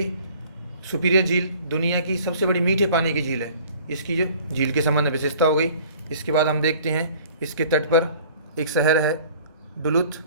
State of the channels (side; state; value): both; inverted; correlation -0.50